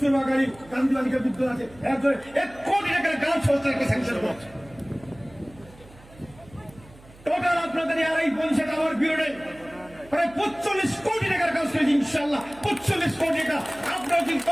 গান্ধী বালিকা বিদ্যালয় আছে, 1 কোটি টাকার গার্লস হোস্টেলকে স্যাংশন করেছে। টোটাল আপনাদের 2.5 পঞ্চায়েত আমার বিরোধে প্রায় 45 কোটি টাকার কাজ করেছি ইনশাআল্লাহ। 45 কোটি টাকা। আপনারা যদি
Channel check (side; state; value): right; noise; hum, 23 dB below the sound